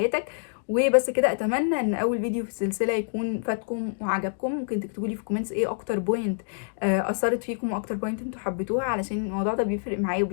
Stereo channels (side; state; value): right; silent; digital silence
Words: وبس كده، اتمنى ان اول فيديو في السلسله يكون فاتكم وعجبكم. ممكن تكتبوا لي في كومنتس ايه اكتر بوينت اثرت فيكم واكتر بوينت انتوا حبيتوها، علشان الموضوع ده بيفرق معايا